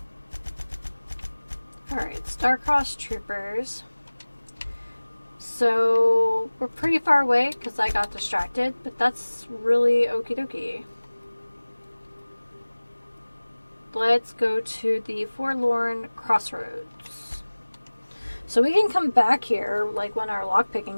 Alright, Star-Crossed Troopers. So we're pretty far away because I got distracted, but that's really okie dokie. Let's go to the Forlorn Crossroads. So we can come back here like when our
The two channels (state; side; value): inverted; both; correlation -1.00